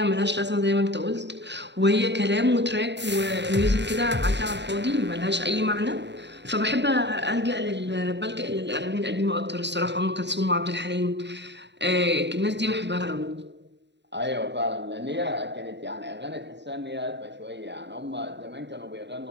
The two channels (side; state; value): left; late; 0.51 ms